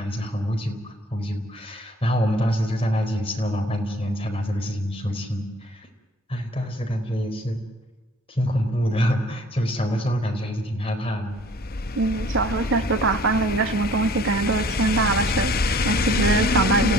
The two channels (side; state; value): both; normal; correlation 0.53